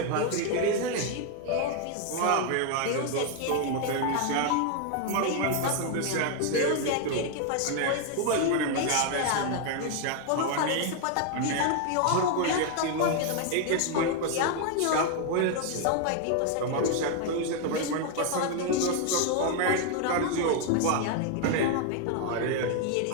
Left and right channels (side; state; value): both; different; correlation 0.01